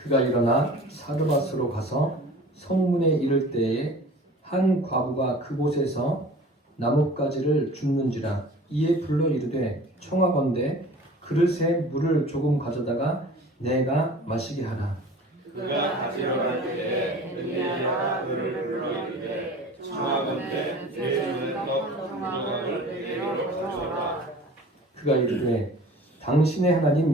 일어나 사르밧으로 가서 성문에 이를 때에 한 과부가 그곳에서 나뭇가지를 줍는지라. 이에 불러 이르되 청하건대 그릇에 물을 조금 가져다가 내가 마시게 하라. 그가 가지러 갈 때에 엘리야가 그를 불러 이르되 청하건대 내 눈에 떡 두 조각을 내게로 가져오라. 그가 이르되 당신의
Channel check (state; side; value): normal; both; correlation 0.43